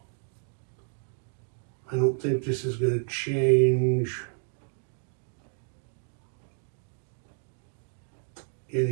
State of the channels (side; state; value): left; silent; 57 dB below the other